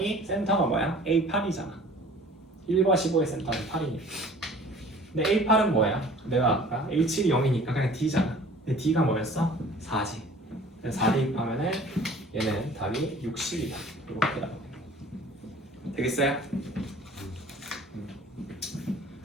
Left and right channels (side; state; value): both; normal; correlation 0.48